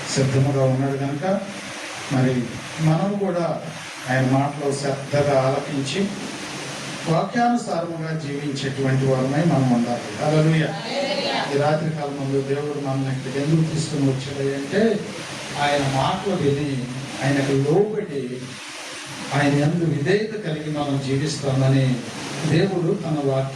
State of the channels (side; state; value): both; identical; correlation 1.00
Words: సిద్ధముగా ఉన్నాడు కనుక మరి మనం కూడా ఆయన మాటలు శ్రద్ధగా ఆలకించి వాక్యానుసారముగా జీవించేటువంటి వారమై మనం ఉండాలి. హల్లెలూయా. ఈ రాత్రి కాలం ముందు దేవుడు మనల్ని ఇక్కడికి ఎందుకు తీసుకుని వచ్చాడు అంటే ఆయన మాటలు విని ఆయనకు లోబడి ఆయన యందు విధేయత కలిగి మనం జీవిస్తామని దేవుడు తన